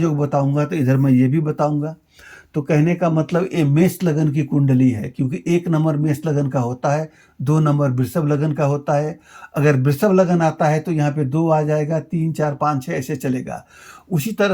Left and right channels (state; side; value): identical; both; correlation 1.00